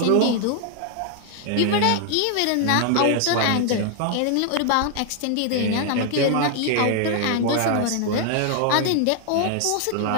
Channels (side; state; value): both; different; correlation 0.00